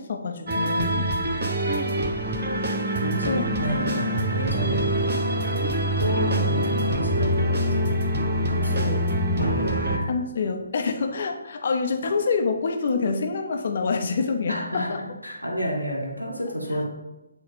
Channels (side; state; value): both; inverted; correlation -0.52